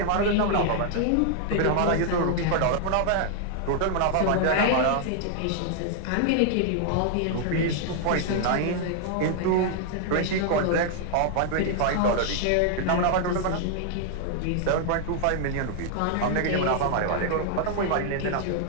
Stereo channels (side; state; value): both; different; correlation 0.00